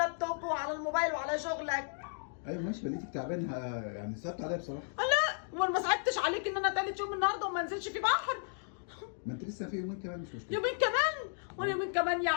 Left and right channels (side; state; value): right; silent; digital silence